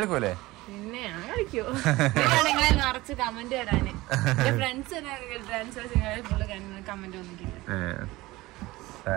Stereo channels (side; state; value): left; quieter; 19.4 dB